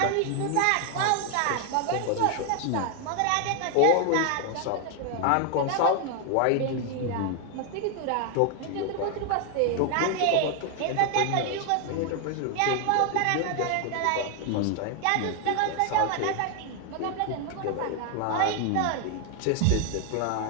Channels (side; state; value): both; different; correlation 0.00